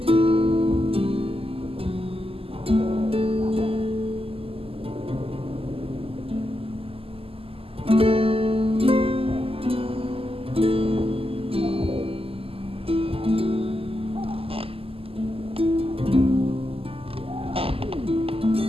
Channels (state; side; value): late; left; 0.27 ms